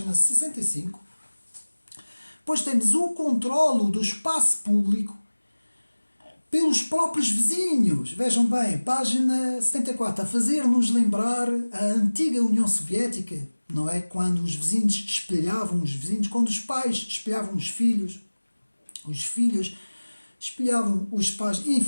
65. Depois temos o controlo do espaço público pelos próprios vizinhos. Vejam bem, página 74, a fazer-nos lembrar a antiga União Soviética, não é? Quando os vizinhos espelhavam os vizinhos, quando os pais espelhavam os filhos espelhavam os pais,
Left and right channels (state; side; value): inverted; both; correlation -1.00